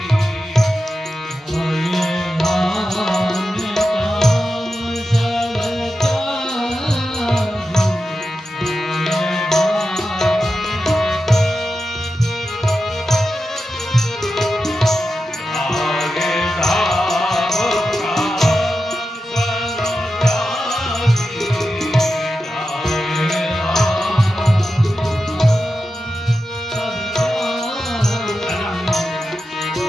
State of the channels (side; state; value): both; normal; correlation 0.91